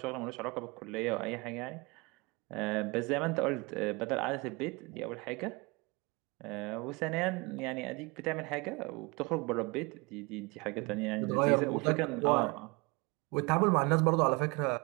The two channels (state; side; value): quieter; left; 26.9 dB